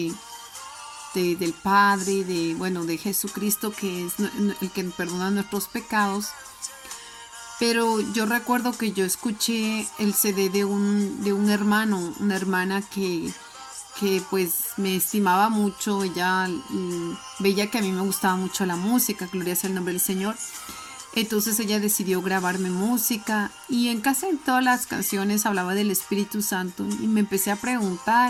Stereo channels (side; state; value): both; identical; correlation 1.00